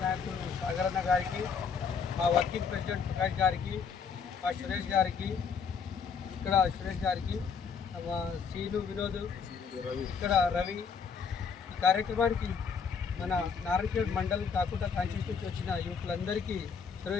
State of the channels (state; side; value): quieter; right; 6.1 dB